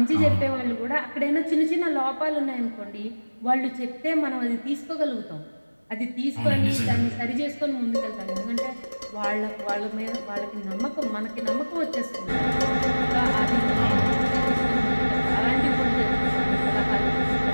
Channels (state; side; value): inverted; both; correlation -1.00